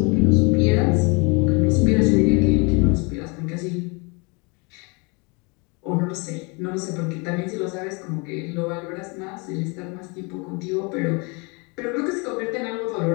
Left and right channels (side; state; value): right; quieter; 30.5 dB